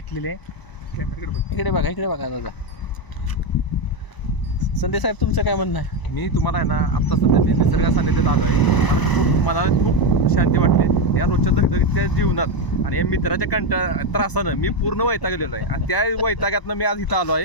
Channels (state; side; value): late; right; 1.0 ms